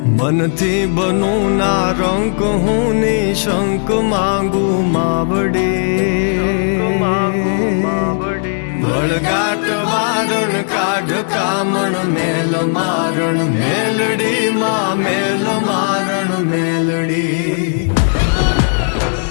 मन थी बनू ना रंक हूँ निशंक मांगू मावड़ी वळगाट वारण काढ कामण मेल मारण मेलडी मां मेल मारण मेलडी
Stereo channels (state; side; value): silent; right; 57 dB below the other